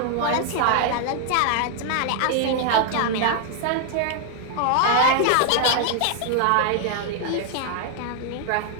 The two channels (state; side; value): different; both; correlation 0.00